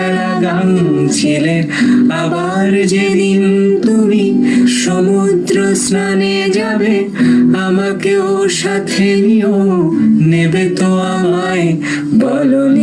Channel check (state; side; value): identical; both; correlation 1.00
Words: গান ছিলে। আবার যেদিন তুমি সমুদ্র স্নানে যাবে, আমাকেও সাথে নিও, নেবে তো আমায়, বলো